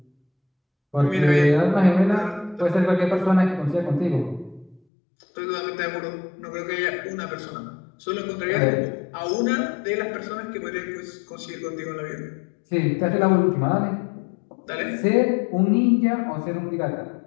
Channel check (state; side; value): drops out; right; at 4.8 s